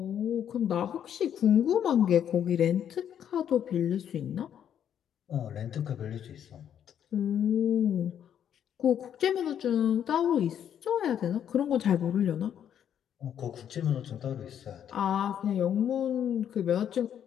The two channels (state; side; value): quieter; right; 9.3 dB